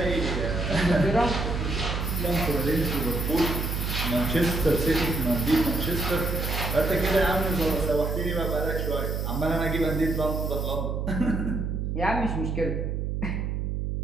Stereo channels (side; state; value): right; noise; hum, 1 dB below the sound